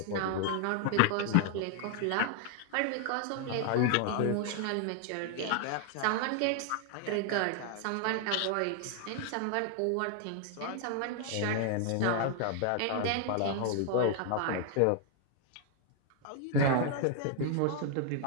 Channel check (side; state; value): both; different; correlation 0.00